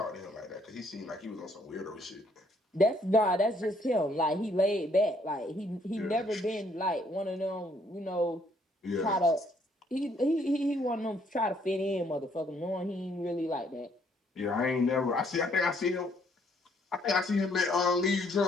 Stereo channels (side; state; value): both; normal; correlation 0.67